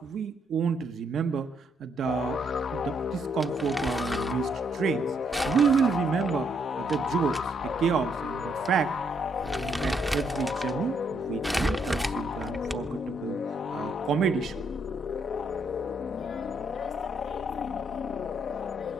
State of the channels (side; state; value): both; normal; correlation 0.73